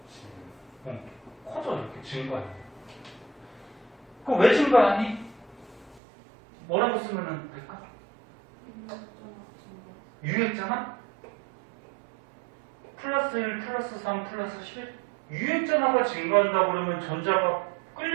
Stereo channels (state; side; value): drops out; left; at 6.0 s